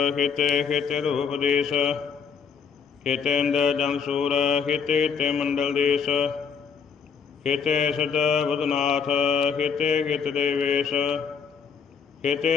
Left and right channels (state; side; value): quieter; right; 6.3 dB